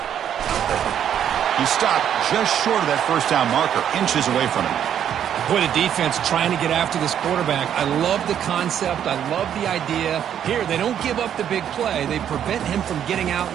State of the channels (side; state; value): left; quieter; 9.5 dB